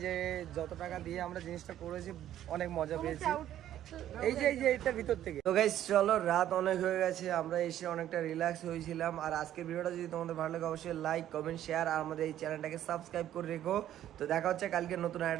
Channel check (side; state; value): left; quieter; 11.9 dB